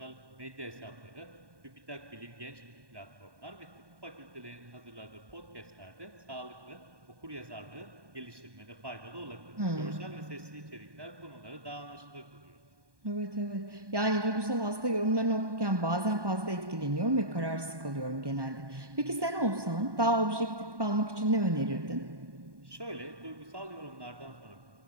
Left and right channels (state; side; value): late; left; 1.2 ms